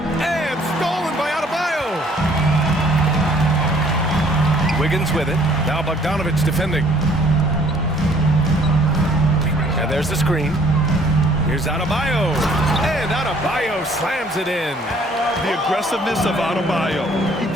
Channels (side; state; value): both; normal; correlation 0.59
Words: stolen by Adebayo. Wiggins with it. Now Bogdanovich defending. And there's the screen. Here's Adebayo. And Adebayo slams it in. The aggressiveness of Adebayo. He